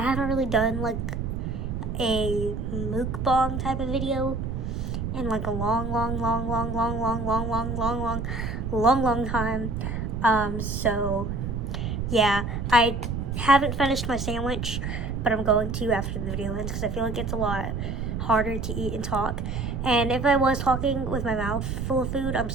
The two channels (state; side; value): noise; right; rumble, 3 dB below the sound